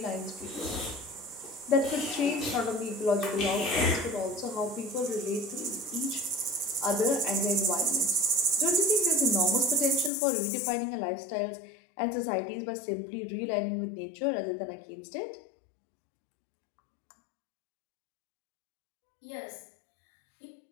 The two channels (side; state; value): right; drops out; at 10.1 s